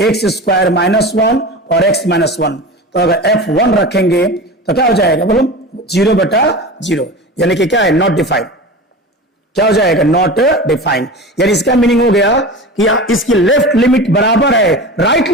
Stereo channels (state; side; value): normal; both; correlation 0.31